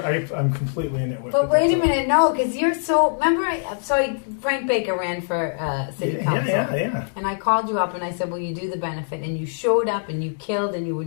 I'm completely a nitwit. But wait a minute, no, because you're so... Remember, Frank Baker ran for city council. Yeah. And I called you up and I said, will you do the benefit? And you showed up and you killed and you were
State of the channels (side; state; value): right; silent; digital silence